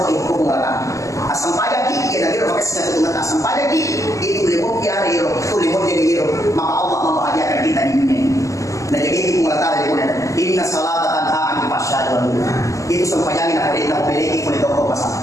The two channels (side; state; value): right; late; 0.16 ms